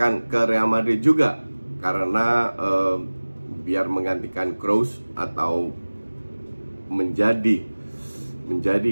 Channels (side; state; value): both; inverted; correlation -1.00